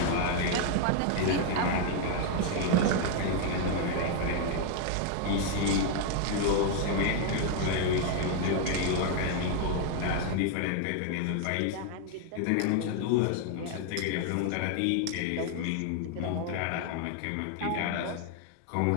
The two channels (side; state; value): both; different; correlation 0.00